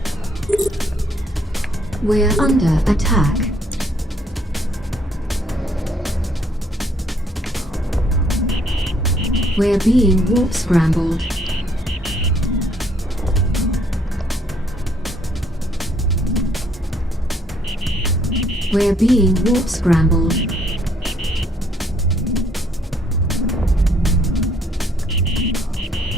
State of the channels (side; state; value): both; normal; correlation 0.67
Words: We're under attack. We're being warp scrambled. We're being warp scrambled.